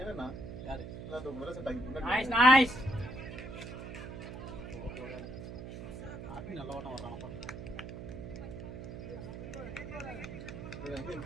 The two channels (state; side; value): noise; right; hum, 9 dB below the sound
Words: யாரு? முதல்ல செட் ஆகி நைஸ் நைஸ் ஆபி நல்ல ஓட்டம் வர்றானப்பா.